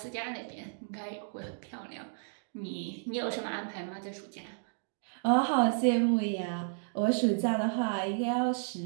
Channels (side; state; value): left; silent; digital silence